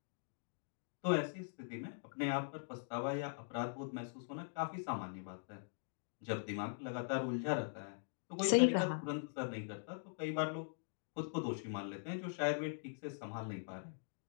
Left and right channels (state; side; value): silent; right; digital silence